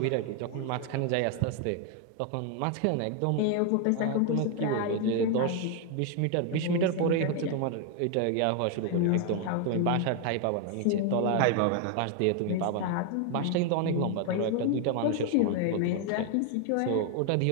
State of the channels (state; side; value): different; both; correlation 0.01